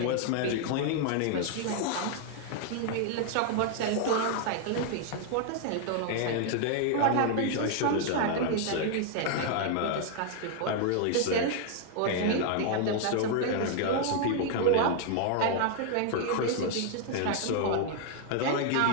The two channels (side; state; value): both; different; correlation 0.00